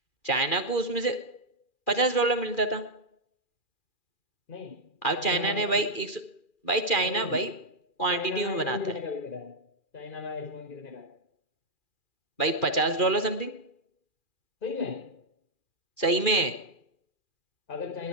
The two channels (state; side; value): late; right; 2.4 ms